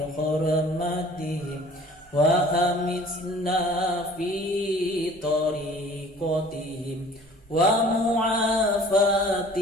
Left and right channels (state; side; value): normal; both; correlation 0.49